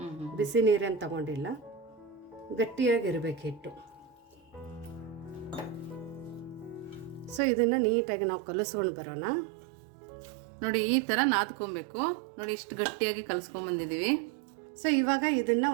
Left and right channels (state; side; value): drops out; left; at 7.4 s